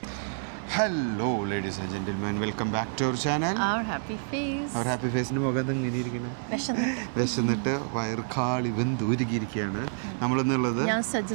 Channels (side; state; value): left; silent; 59 dB below the other